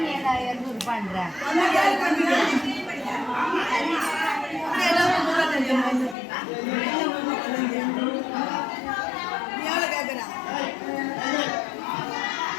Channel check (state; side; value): drops out; right; at 6.2 s